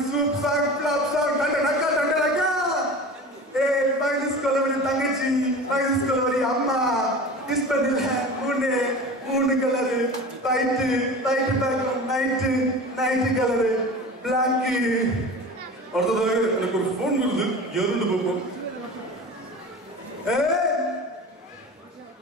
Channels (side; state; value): both; normal; correlation 0.35